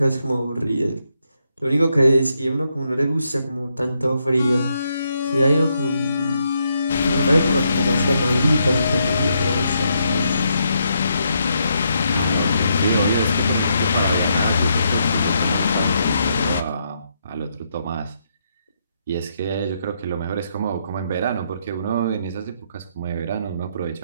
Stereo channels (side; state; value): both; inverted; correlation -0.78